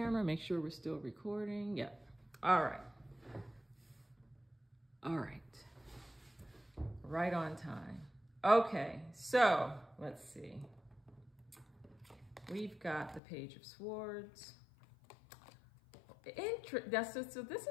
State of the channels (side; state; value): right; drops out; at 13.2 s